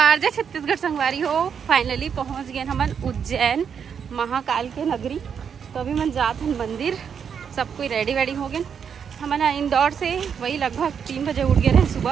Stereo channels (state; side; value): quieter; left; 7.2 dB